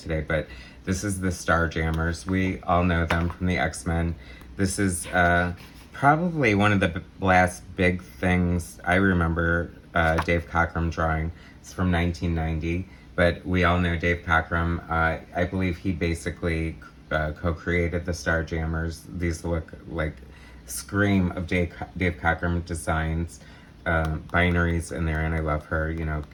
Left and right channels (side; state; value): both; identical; correlation 1.00